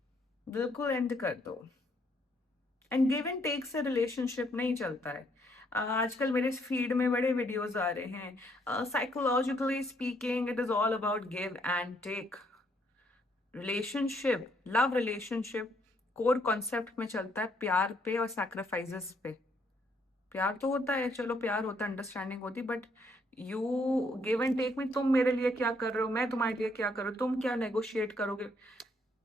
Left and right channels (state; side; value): normal; both; correlation 0.70